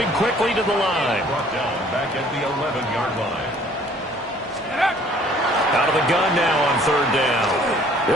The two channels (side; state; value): both; normal; correlation 0.56